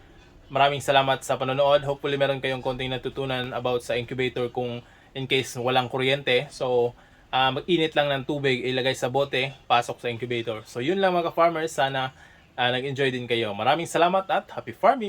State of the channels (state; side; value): identical; both; correlation 1.00